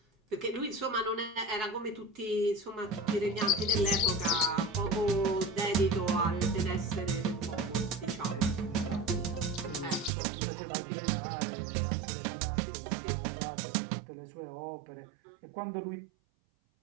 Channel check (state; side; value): drops out; left; at 10.1 s